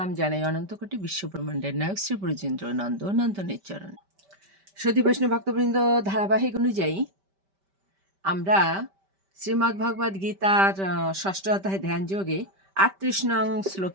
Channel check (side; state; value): left; late; 5.1 ms